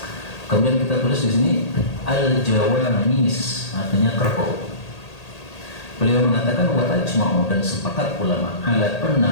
Kemudian kita tulis di sini Al-Jawamis, artinya kerbau. Beliau mengatakan wa ajma'u, dan sepakat ulama ala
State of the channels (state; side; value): late; right; 1.8 ms